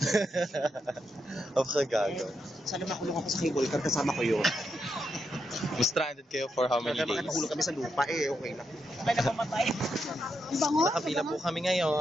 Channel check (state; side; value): normal; both; correlation 0.83